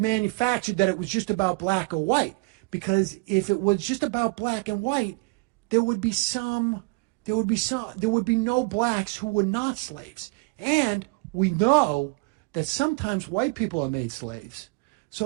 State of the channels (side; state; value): left; quieter; 28.7 dB